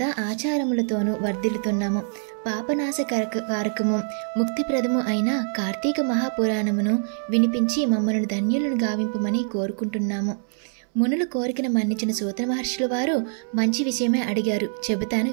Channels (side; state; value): left; silent; 62 dB below the other